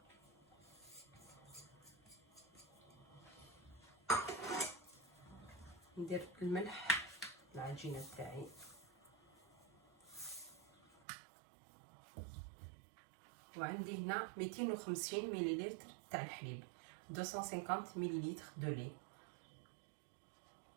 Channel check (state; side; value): drops out; left; at 11.0 s